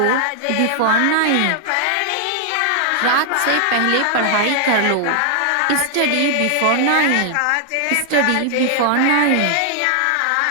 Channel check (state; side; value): different; both; correlation 0.00